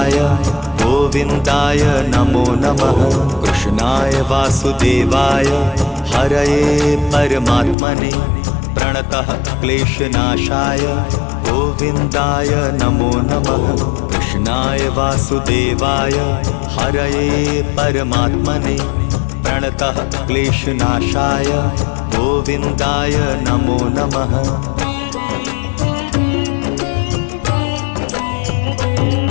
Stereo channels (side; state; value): right; drops out; at 7.8 s